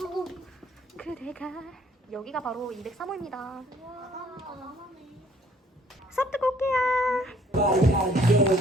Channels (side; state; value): both; normal; correlation 0.60